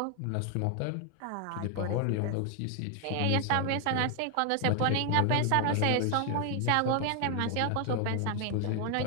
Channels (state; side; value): different; both; correlation 0.00